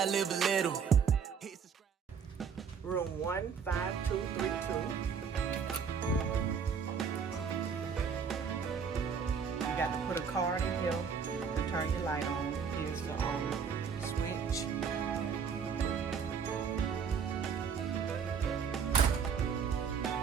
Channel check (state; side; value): quieter; left; 6.5 dB